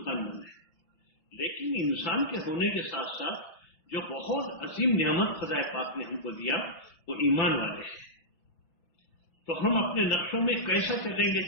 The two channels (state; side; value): late; right; 6.0 ms